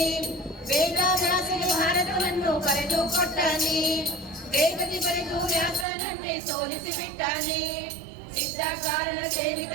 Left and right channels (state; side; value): drops out; left; at 5.9 s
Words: ವೇದ ವ್ಯಾಸಗೆ ಭಾರತವನ್ನು ಬರೆದು ಕೊಟ್ಟಾನೆ, ವೇದದಿ ಬರೆದು ವ್ಯಾಸನನ್ನೇ ಸೋಲಿಸಿ ಬಿಟ್ಟಾನೆ. ಸಿದ್ಧ ಕಾರಣ ಸೇವಿತ